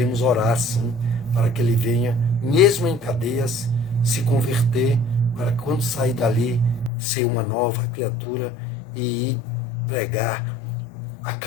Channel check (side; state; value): right; drops out; at 6.9 s